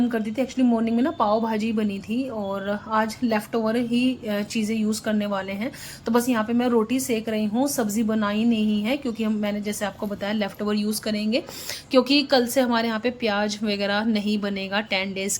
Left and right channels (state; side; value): identical; both; correlation 1.00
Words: कर दी थी। एक्चुअली मॉर्निंग में ना पाव भाजी बनी थी, और आज लेफ़्ट ओवर ही चीज़ें यूज़ करने वाले हैं। तो बस यहाँ पे मैं रोटी सेक रही हूँ, सब्ज़ी बनाई नहीं है, क्योंकि मैंने जैसे आपको बताया लेफ़्ट ओवर यूज़ करेंगे, क्योंकि कल से हमारे यहाँ पे प्याज वगैरह नहीं बनेगा 10 डेज़